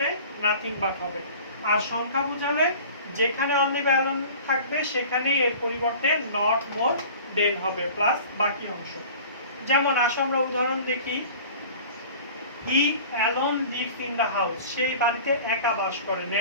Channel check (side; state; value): both; inverted; correlation -0.43